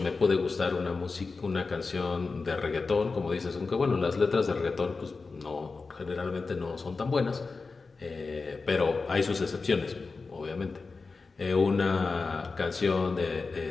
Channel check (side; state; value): right; quieter; 4.2 dB